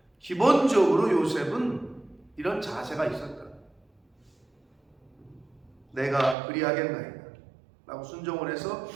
기본적으로 요셉은 이런 자세가 있었다. 내가 그리하겠나이다 라고 순종을 해서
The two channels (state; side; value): drops out; left; at 6.4 s